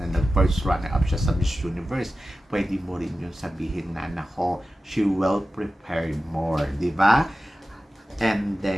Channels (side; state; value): both; normal; correlation 0.94